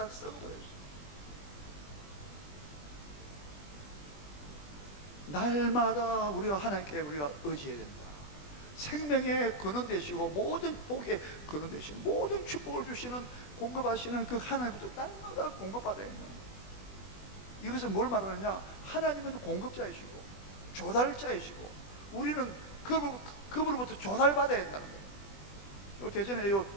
썩어버렸어요. 날마다 우리가 하나님께 우리가 의지해야 된다. 생명의 근원 되시고 모든 복의 근원 되시는 모든 축복을 주시는 공급하시는 그 하나님부터 날마다 공급받아야 된다. 이것은 뭘 말하느냐? 하나님은 공급자이시고 조달자이시고 우리는 그분으로부터 조달받아야 된다는 거예요. 요 대전에 요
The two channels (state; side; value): late; right; 20 ms